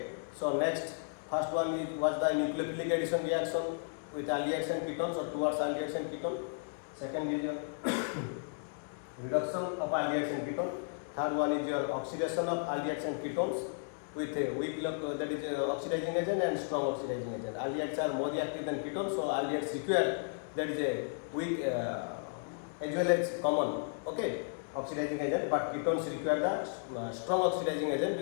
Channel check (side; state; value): right; silent; digital silence